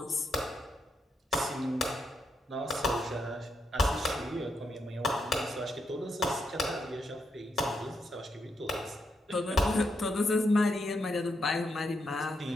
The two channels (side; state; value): both; normal; correlation 0.81